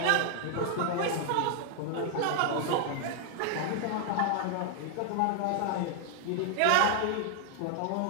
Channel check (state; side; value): different; both; correlation 0.00